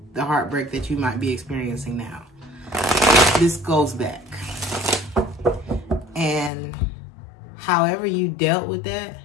the heartbreak that you might be experiencing now. This goes back. And however you dealt with that,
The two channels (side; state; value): right; drops out; at 6.5 s